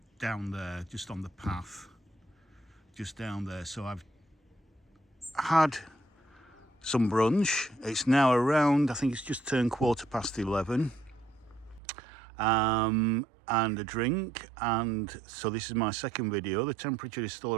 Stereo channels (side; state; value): left; drops out; at 11.8 s